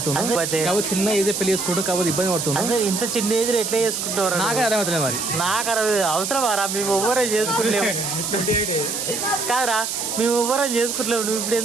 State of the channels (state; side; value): noise; right; hiss, 3 dB below the sound